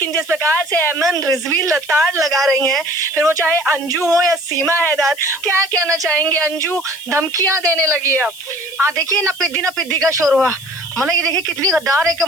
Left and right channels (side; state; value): left; noise; hiss, 19 dB below the sound